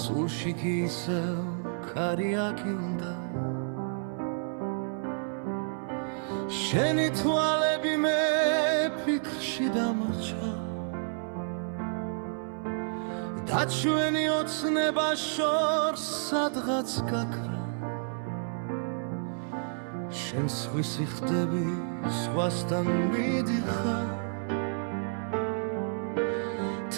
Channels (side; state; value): left; silent; 57 dB below the other